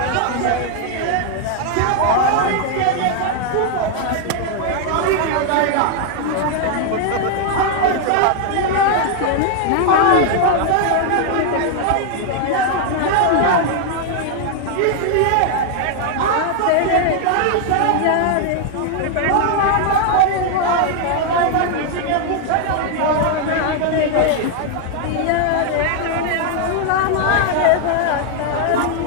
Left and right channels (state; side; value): different; both; correlation 0.00